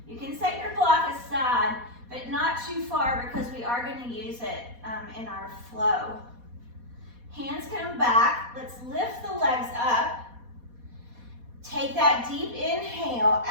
You can set your block aside, but not too far because we are going to use it in our flow. Hands come back. Let's lift the legs up. Take that deep inhale.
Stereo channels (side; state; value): left; late; 4.2 ms